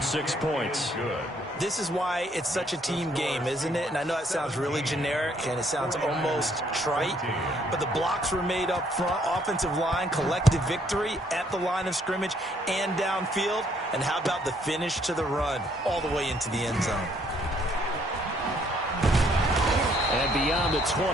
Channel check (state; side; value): normal; both; correlation 0.67